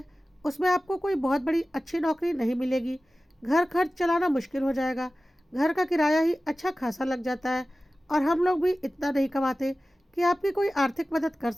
उसमें आपको कोई बहुत बड़ी अच्छी नौकरी नहीं मिलेगी। घर खर्च चलाना मुश्किल हो जाएगा। घर का किराया ही अच्छा खासा लग जाता है और हम लोग भी इतना नहीं कमाते कि आपकी कोई आर्थिक मदद कर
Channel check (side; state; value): both; normal; correlation 0.96